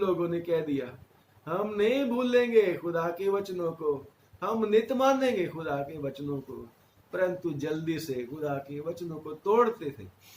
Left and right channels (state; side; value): identical; both; correlation 1.00